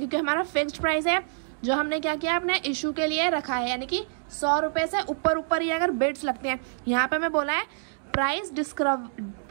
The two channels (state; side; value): silent; left; digital silence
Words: हमारा फिक्स्ड प्राइस है जो हमने क्या किया अपने इशू के लिए रखा है। यानी कि 100 रुपये से ऊपर ही अगर बिड्स लगते हैं, यहाँ पे मैं बोला है